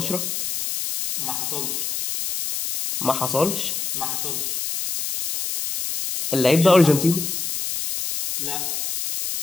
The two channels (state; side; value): noise; left; hiss, 3 dB below the sound